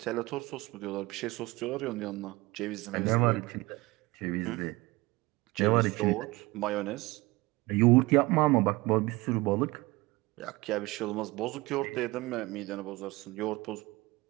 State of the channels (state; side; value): quieter; left; 21.9 dB